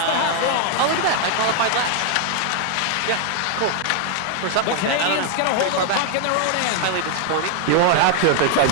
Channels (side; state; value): both; different; correlation 0.00